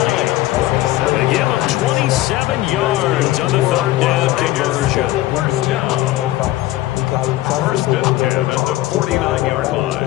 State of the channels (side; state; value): right; quieter; 16.1 dB